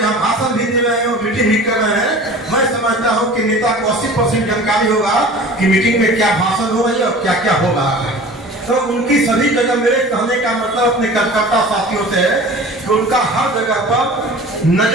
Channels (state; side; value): normal; both; correlation 0.41